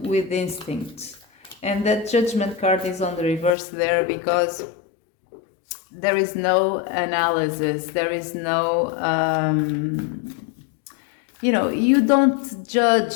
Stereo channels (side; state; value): right; drops out; at 3.6 s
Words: with instinct. And that Judgment card is on the reverse there because there is no analysis, there is no you don't